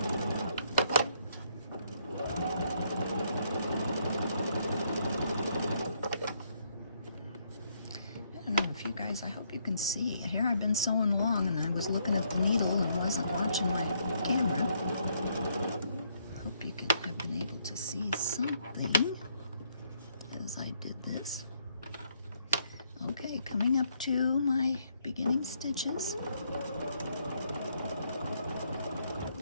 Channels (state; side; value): inverted; both; correlation -0.72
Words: guys, I hope you can see. Here I've been sewing along and I was looking at the needle and wasn't watching my camera. Hope you have been able to see something as I did this. Okay, coming up to my beginning stitches.